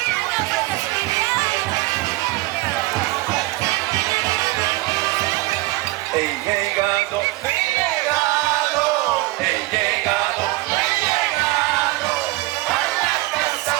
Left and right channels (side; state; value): left; quieter; 20.4 dB